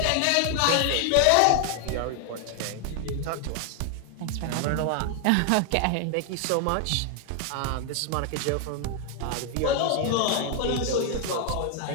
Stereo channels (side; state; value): both; different; correlation 0.00